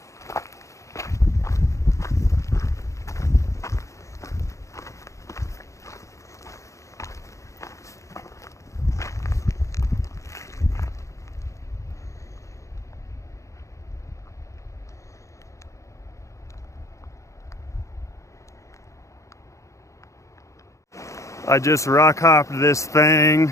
I just rock hopped this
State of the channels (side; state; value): right; late; 0.15 ms